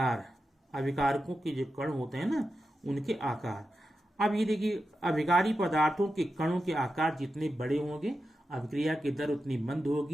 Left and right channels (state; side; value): normal; both; correlation 0.90